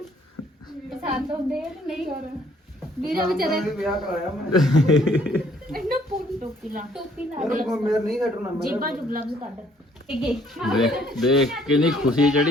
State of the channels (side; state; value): both; normal; correlation 0.63